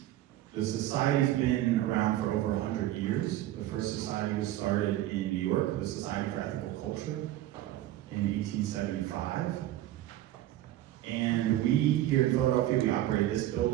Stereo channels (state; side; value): quieter; left; 14.1 dB